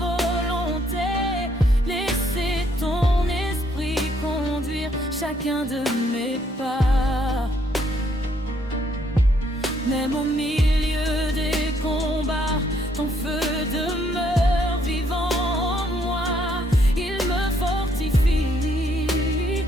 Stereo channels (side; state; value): both; normal; correlation 0.70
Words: laisser ton esprit conduire chacun de mes pas. Même au milieu des combats, ton feu demeure vivant en moi. Il me fortifie,